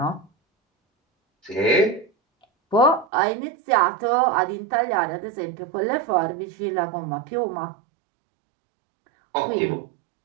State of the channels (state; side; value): drops out; left; at 3.1 s